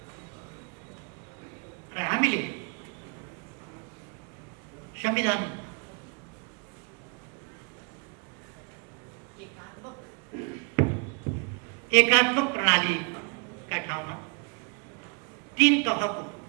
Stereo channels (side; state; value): left; quieter; 37.1 dB